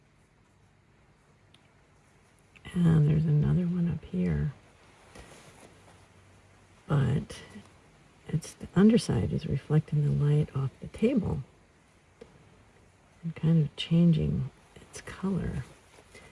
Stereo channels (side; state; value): both; identical; correlation 1.00